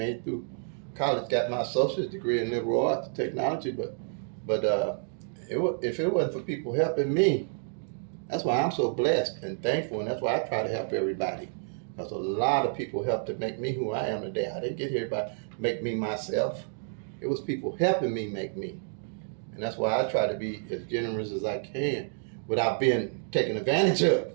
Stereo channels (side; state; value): left; silent; digital silence